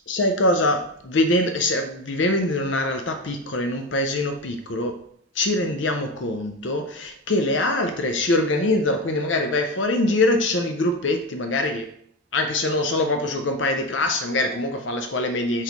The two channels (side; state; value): both; normal; correlation 0.19